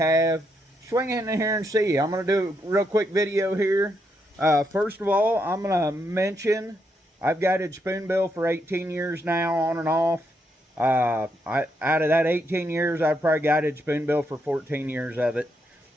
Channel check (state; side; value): normal; both; correlation 0.79